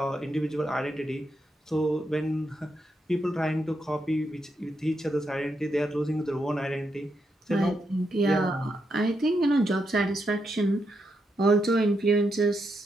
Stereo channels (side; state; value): both; normal; correlation 0.82